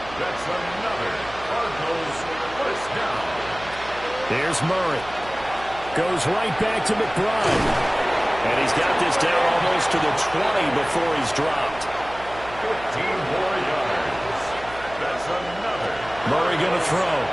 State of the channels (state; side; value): noise; right; hum, 17 dB below the sound